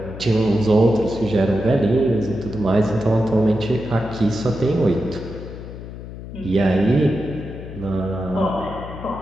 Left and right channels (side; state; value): left; noise; hum, 11 dB below the sound